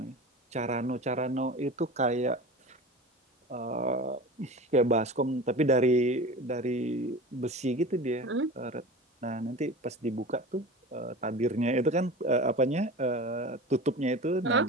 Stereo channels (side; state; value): both; normal; correlation 0.33